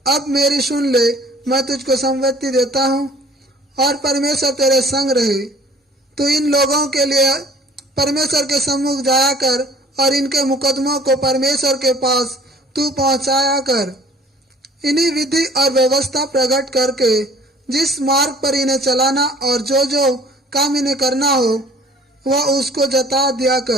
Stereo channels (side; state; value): both; normal; correlation 0.52